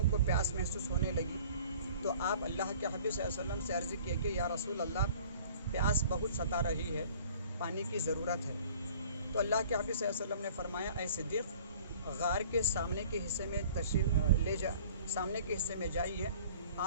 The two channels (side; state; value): both; inverted; correlation -0.49